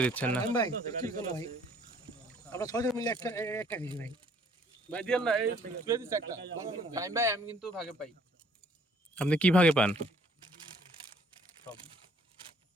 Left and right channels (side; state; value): both; normal; correlation 0.60